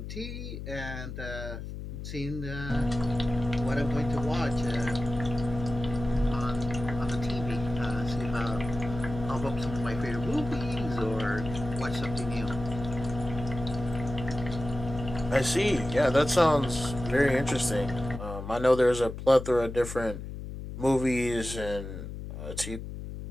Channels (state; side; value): noise; left; hum, 8 dB below the sound